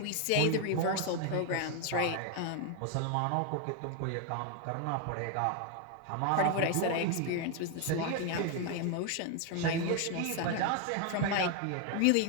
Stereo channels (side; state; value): both; different; correlation 0.00